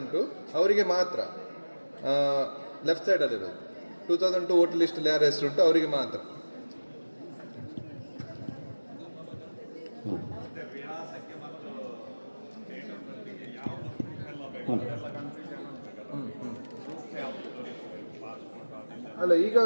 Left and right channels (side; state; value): both; inverted; correlation -1.00